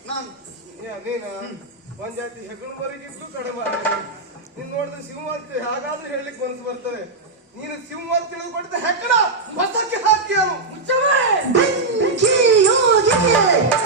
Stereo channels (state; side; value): quieter; left; 3.6 dB